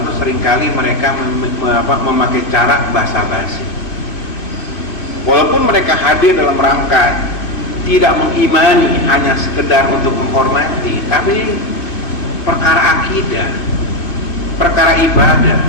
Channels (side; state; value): right; late; 2.5 ms